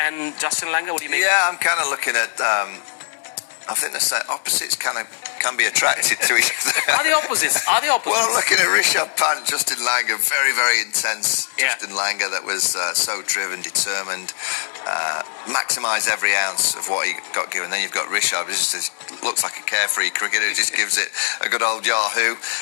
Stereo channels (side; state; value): right; silent; digital silence